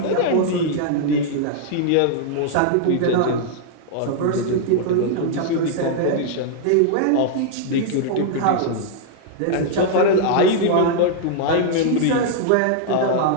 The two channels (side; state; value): both; different; correlation -0.01